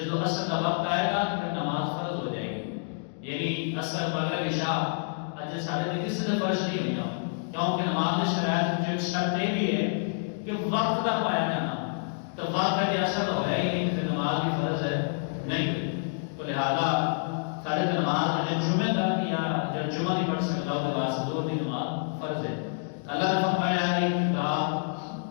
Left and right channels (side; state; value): right; silent; digital silence